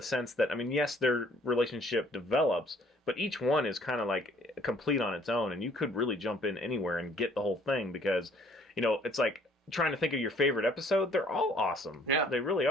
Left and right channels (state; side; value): normal; both; correlation 0.59